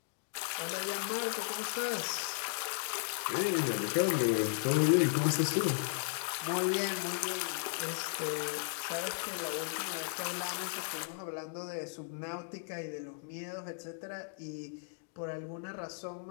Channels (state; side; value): silent; right; digital silence